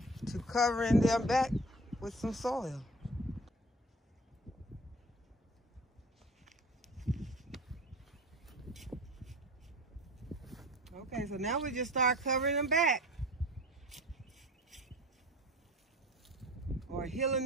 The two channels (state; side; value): normal; both; correlation 0.42